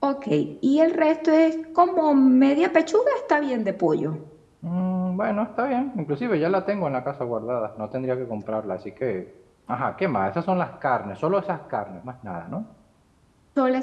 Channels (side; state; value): both; identical; correlation 1.00